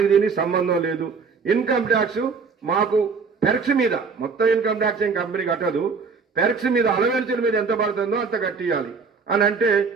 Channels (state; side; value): quieter; left; 5.1 dB